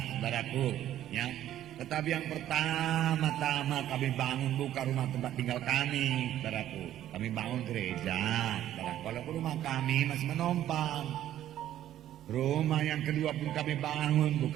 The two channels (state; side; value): quieter; left; 12.2 dB